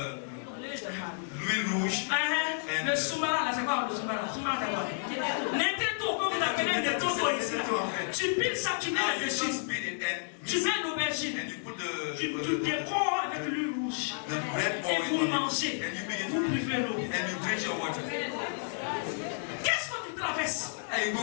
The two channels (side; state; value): right; silent; 57 dB below the other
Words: l'huile rouge. Le sombara, là, c'est quoi le sombara? Sombara, c'est quoi? N'importe quoi, vous appelez des totos ici. Tu piles ça, tu mets Now you là-dessus. just beat it and Tu mix mets it, l'aubergine. and you put Tu décores avec l'huile rouge. the red Et vous oil on mangez. it, and you begin Vous to buvez l'eau. and you drink your water. Qu'est-ce que tu traverses? And you